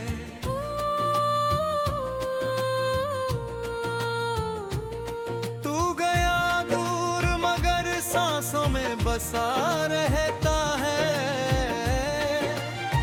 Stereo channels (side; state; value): both; identical; correlation 1.00